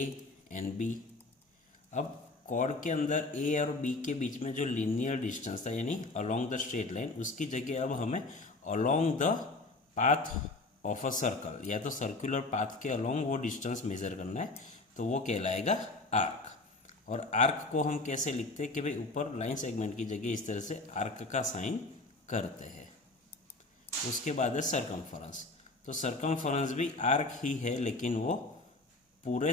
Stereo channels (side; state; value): right; quieter; 3.2 dB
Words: एंड बी। अब कॉर्ड के अंदर ए और बी के बीच में जो लीनियर डिस्टेंस था यानी अलोंग द स्ट्रेट लाइन, उसकी जगह अब हमें along the path of a circle या तो सर्कुलर पाथ के अलोंग वो डिस्टेंस मेजर करना है, तो वो कहलाएगा आर्क। और आर्क को हम कैसे लिखते हैं कि भाई ऊपर लाइन सेगमेंट की जगह इस तरह से आर्क का साइन करते हैं। उसके बाद है सरकमफरेंस। तो सरकमफरेंस भी आर्क ही है लेकिन वो पूरे